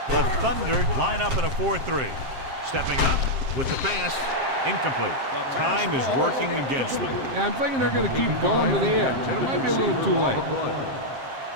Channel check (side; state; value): left; late; 7.6 ms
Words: The Thunder line up in a 4-3. Stepping up with the pass. Incomplete. Time is working against them. Yeah, I'm thinking they're going to keep going to the edge, and it might be a little too late.